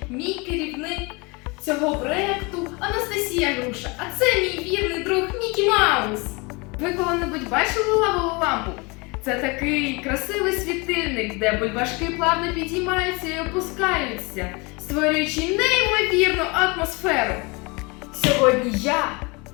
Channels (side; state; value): right; quieter; 27.7 dB